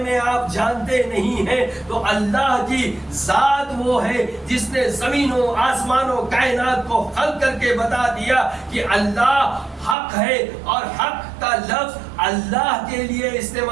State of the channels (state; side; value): drops out; left; at 10.0 s